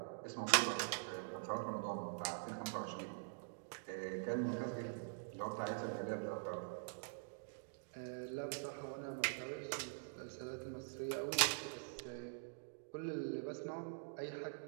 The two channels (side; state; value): left; silent; digital silence